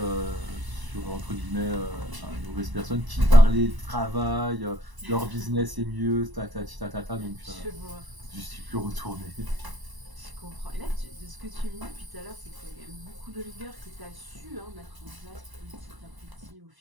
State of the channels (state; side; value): late; left; 1.0 ms